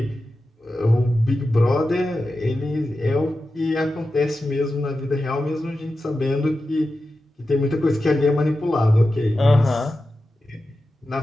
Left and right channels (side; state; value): both; normal; correlation 0.92